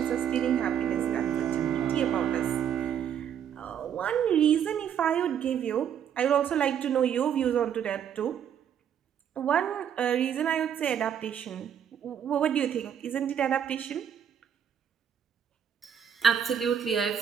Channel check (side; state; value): left; quieter; 8.8 dB